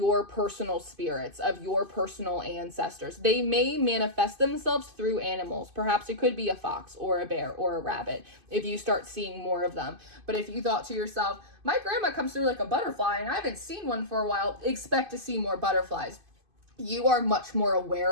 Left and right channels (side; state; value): left; late; 2.5 ms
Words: personal spirits, of your personal ancestors. They may manifest themselves through animals. Perhaps it could be a fox or a bear or a rabbit if you start seeing more of them. But if you thought to yourself, my grandma comes through like a butterfly and I haven't seen one for a while, expect to see more butterflies. You are much more